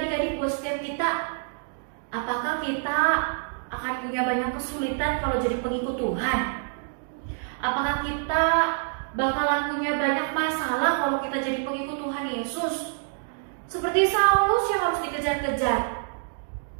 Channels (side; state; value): left; silent; digital silence